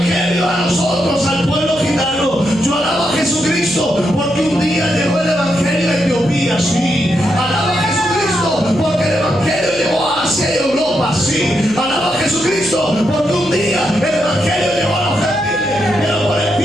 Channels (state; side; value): noise; left; hum, 23 dB below the sound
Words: a nosotros, al pueblo gitano. Yo alabo a Jesucristo porque un día llegó el evangelio a Etiopía, sí. Alaba a Jesucristo porque el evangelio llegó a Asia y Europa, sí. Alaba a Jesucristo porque un día el evangelio llegó a los gentiles, pero por